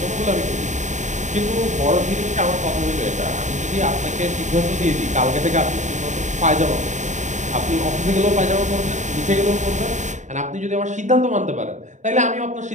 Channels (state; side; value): late; left; 0.35 ms